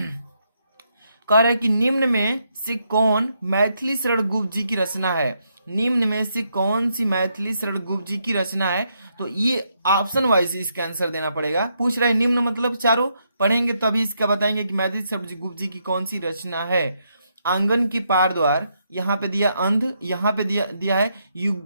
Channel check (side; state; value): both; inverted; correlation -0.78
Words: कह रहा है कि निम्न में से कौन मैथिली शरण गुप्त जी की रचना है। निम्न में से कौन सी मैथिली शरण गुप्त जी की रचना है, तो ये ऑप्शन वाइज इसका आंसर देना पड़ेगा। पूछ रहा है निम्न मतलब चारों, पढ़ेंगे तभी इसका बताएंगे कि मैथिली शरण गुप्त जी की कौन सी रचना है। आंगन की पार द्वार, यहाँ पे दिया अंध, यहाँ पे दिया है